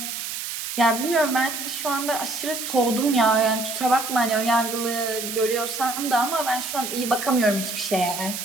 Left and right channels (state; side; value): noise; right; hiss, 6 dB below the sound